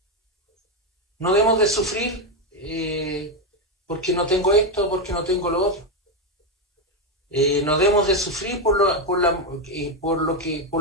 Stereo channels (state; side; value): normal; both; correlation 0.07